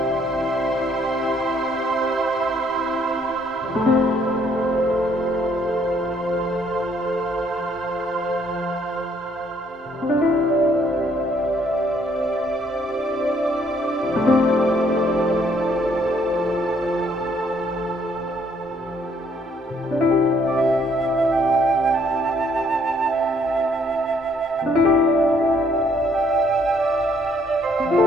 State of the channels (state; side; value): normal; both; correlation 0.66